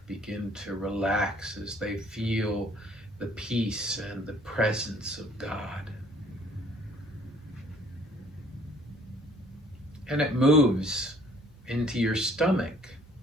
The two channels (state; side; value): normal; both; correlation 0.58